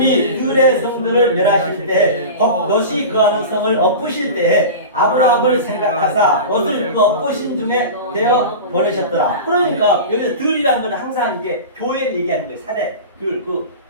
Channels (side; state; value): both; inverted; correlation -0.30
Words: 들의 성들을 멸하실 때, 롯이 거하는 성을 엎으실 때에 아브라함을 생각하사 롯을 그 엎으신 중에 되어 버리셨더라. 그러니까 여기서 들이라는 것은 항상 이게 교회를 얘기하는 거예요. 사대. 그